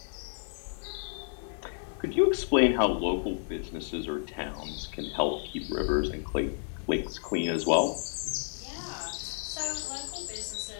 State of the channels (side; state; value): right; silent; 57 dB below the other